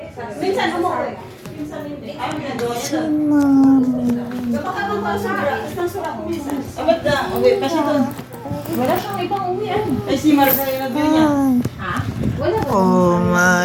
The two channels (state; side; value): identical; both; correlation 1.00